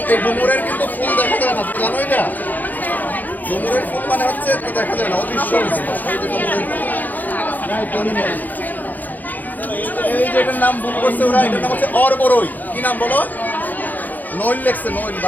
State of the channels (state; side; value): late; right; 0.083 ms